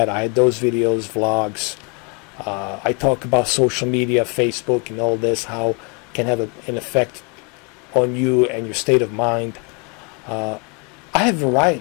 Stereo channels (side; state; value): right; quieter; 33.6 dB